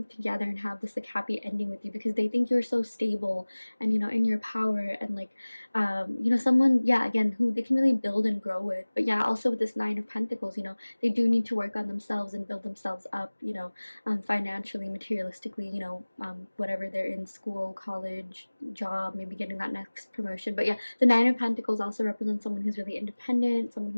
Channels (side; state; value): both; inverted; correlation -1.00